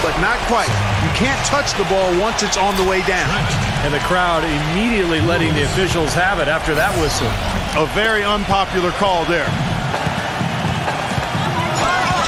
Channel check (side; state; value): both; identical; correlation 1.00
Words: but not quite. You can't touch the ball once it's on the way down. And the crowd immediately letting the officials have it after that whistle. A very unpopular call there.